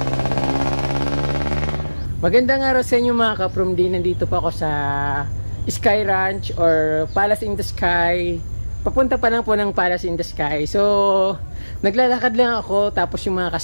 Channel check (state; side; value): inverted; both; correlation -1.00